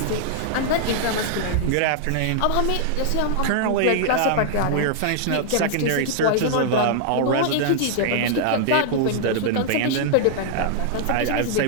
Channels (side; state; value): both; different; correlation -0.01